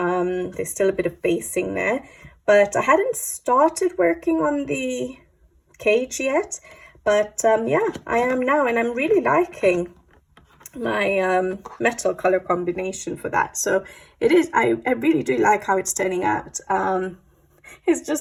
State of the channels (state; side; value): identical; both; correlation 1.00